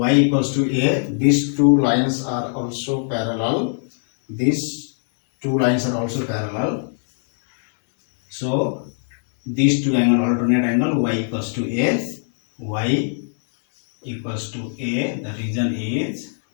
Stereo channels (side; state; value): right; silent; 62 dB below the other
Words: equals to A. These two lines are also parallel. These two lines are also parallel. So these two angle, alternate angle, Y equals to A. Y equals to A. The reason is